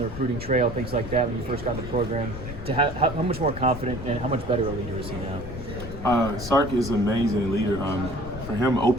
recruiting trail, things like that, when you first got in the program, to how much more confident and how much better a leader is he now? Sark is an amazing leader. For him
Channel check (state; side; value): noise; left; rumble, 10 dB below the sound